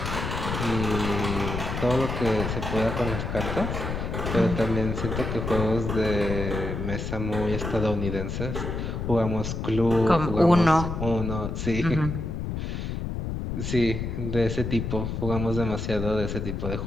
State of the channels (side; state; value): left; noise; rumble, 4 dB below the sound